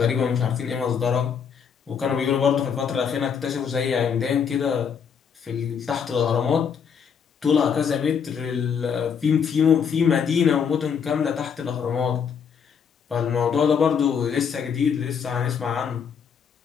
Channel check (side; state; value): right; quieter; 7.0 dB